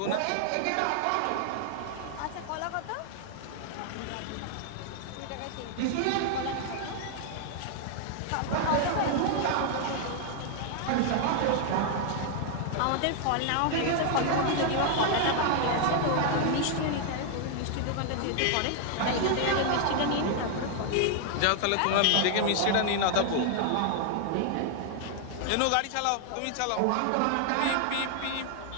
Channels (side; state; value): both; different; correlation 0.00